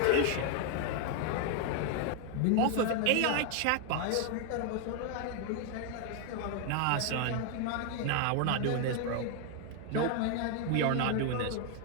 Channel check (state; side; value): different; both; correlation 0.00